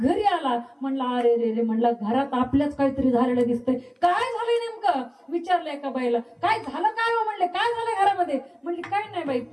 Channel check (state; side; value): identical; both; correlation 1.00